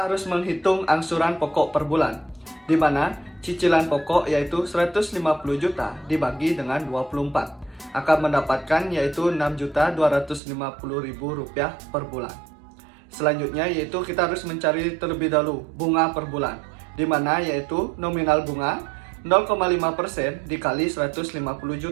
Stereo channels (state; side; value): drops out; left; at 10.4 s